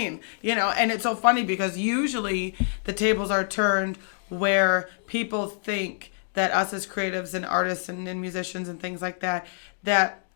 And it's so funny because usually the tables are turned where people think that us as creatives and artists and musicians and things like that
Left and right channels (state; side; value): silent; right; digital silence